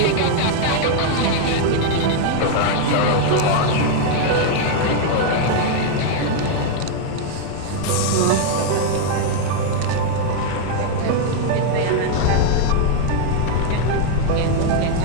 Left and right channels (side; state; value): both; different; correlation 0.00